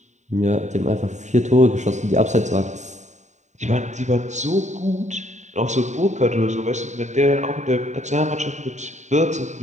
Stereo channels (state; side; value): late; left; 0.34 ms